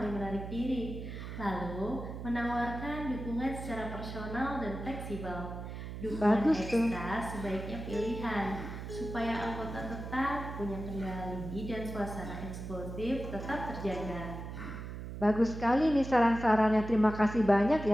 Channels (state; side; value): noise; right; hum, 8 dB below the sound